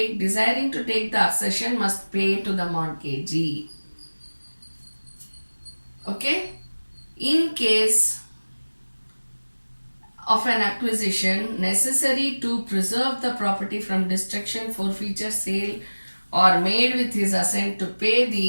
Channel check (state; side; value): inverted; both; correlation -1.00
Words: the accession must pay to the mortgagee. Okay? In case of an acquisition necessary to preserve the property from destruction, forfeiture, sale, or made with his assent, to pay